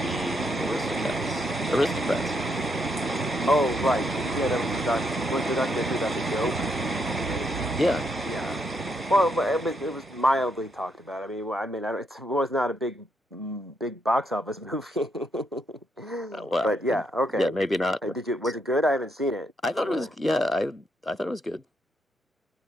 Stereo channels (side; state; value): both; normal; correlation 0.77